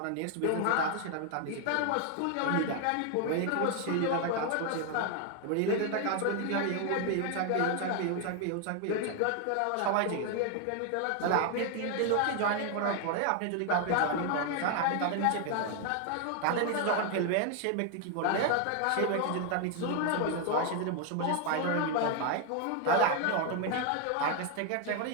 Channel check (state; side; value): different; both; correlation 0.00